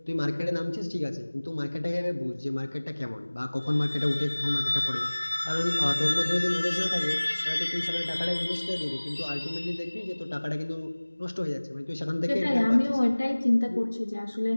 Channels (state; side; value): inverted; both; correlation -1.00